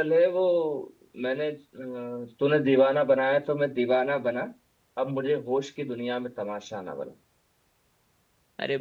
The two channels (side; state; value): both; identical; correlation 1.00